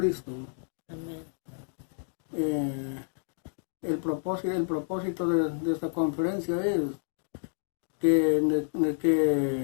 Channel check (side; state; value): right; silent; digital silence